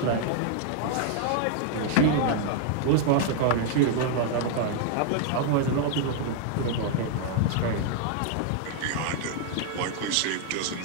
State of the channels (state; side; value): different; both; correlation -0.01